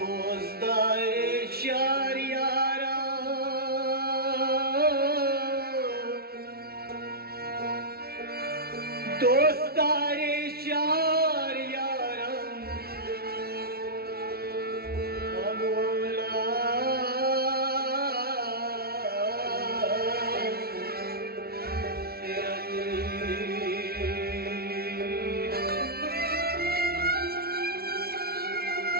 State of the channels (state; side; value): late; left; 0.45 ms